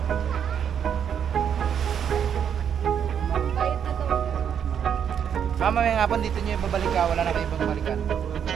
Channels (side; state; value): left; quieter; 8.3 dB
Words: Mamaya nga po dito nyo yung babalik ka, wala na kayo ibang balikan.